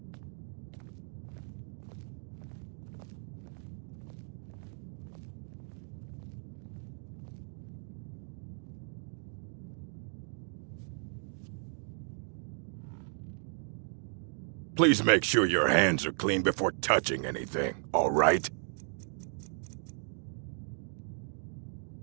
Please make sure your hands are clean before touching anything, all right?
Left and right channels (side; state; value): left; silent; 54 dB below the other